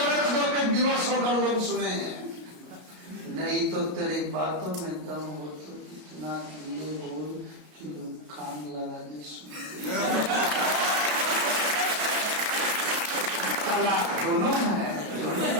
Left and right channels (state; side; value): late; left; 33 ms